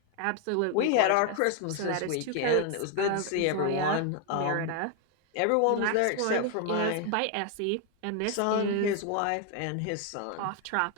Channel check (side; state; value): both; different; correlation 0.01